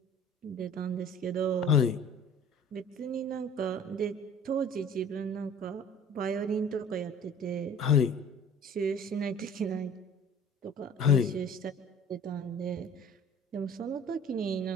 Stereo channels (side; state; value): both; normal; correlation 0.47